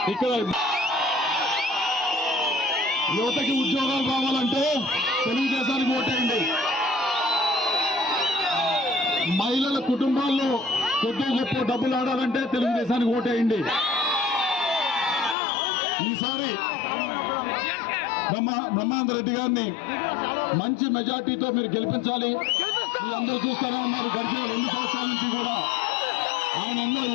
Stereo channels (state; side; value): drops out; right; at 15.4 s